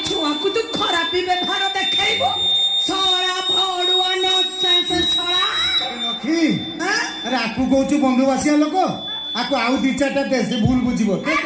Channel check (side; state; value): both; identical; correlation 1.00